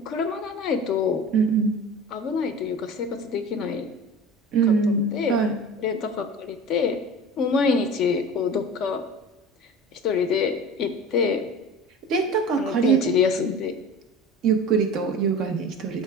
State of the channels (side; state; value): both; normal; correlation 0.36